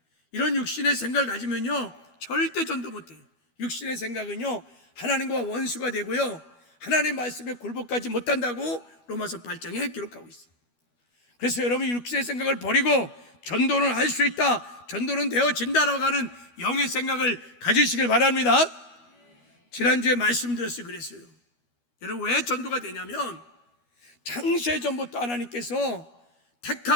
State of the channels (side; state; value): right; late; 12 ms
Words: 이런 육신의 생각을 가지면요 절대 전도 못해요. 육신의 생각은요 하나님과 원수가 되고요 하나님의 말씀에 굴복하지 못한다고 로마서 8장에 기록하고 있어요. 그래서 여러분 육신의 생각을 버리고 전도는 할 수 있다, 전도는 되어진다라고 하는 영의 생각을 가지시길 바랍니다. 지난주에 말씀드렸어요. 그랬어요. 여러분 왜 전도가 되냐면 창세전부터 하나님께서